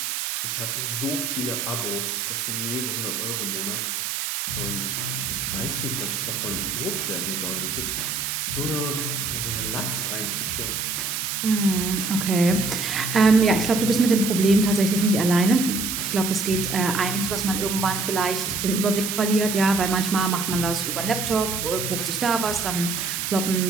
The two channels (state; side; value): noise; right; hiss, 2 dB below the sound